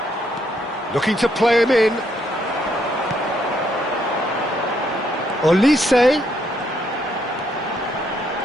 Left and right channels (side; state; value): both; normal; correlation 0.73